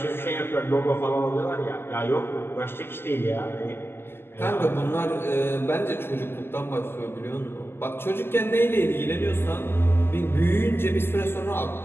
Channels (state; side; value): late; right; 0.11 ms